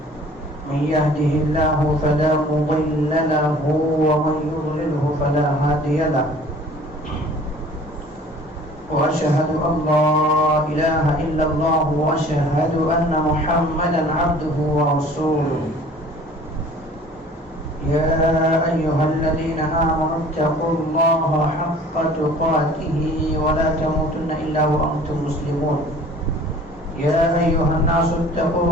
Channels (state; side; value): normal; both; correlation 0.49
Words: من يهده الله فلا مضل له ومن يضلله فلا هادي له وأشهد أن لا إله إلا الله وأشهد أن محمدا عبده ورسوله يا أيها الذين آمنوا اتقوا الله حق تقاته ولا تموتن إلا وأنتم مسلمون يا أيها الناس اتقوا